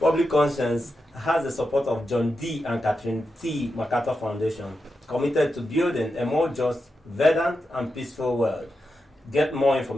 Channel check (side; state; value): both; normal; correlation 0.88